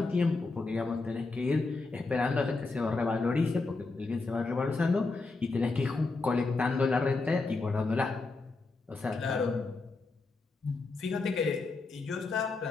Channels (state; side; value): quieter; right; 3.7 dB